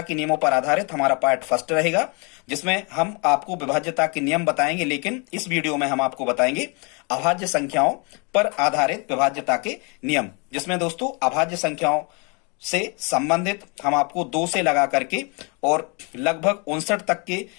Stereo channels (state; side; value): quieter; right; 32.8 dB